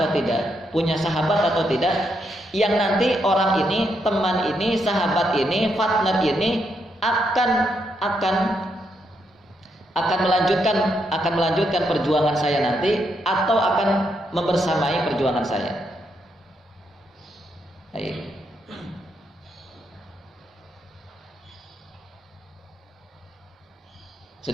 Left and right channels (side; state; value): both; normal; correlation 0.79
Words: tidak? Punya sahabat atau tidak? Yang nanti orang ini, teman ini, sahabat ini, partner ini akan melanjutkan perjuangan saya nanti, atau akan membersamai perjuangan saya. Baik.